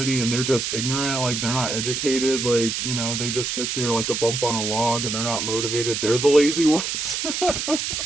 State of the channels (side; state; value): right; noise; hiss, 2 dB below the sound